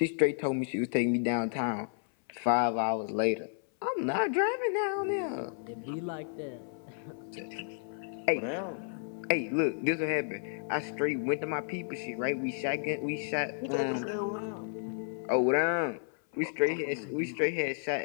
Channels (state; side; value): silent; right; 56 dB below the other